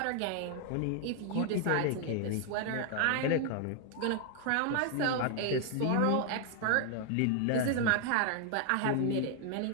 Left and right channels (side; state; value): both; different; correlation 0.00